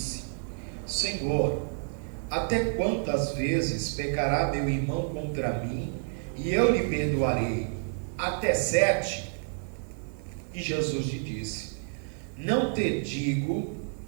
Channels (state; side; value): silent; left; 58 dB below the other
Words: Senhor, até quantas vezes pecará meu irmão contra mim e eu lhe perdoarei? Até 7? E Jesus lhe disse: Não te digo